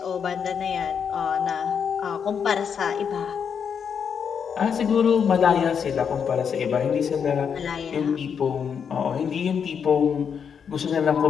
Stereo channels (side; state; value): right; quieter; 7.1 dB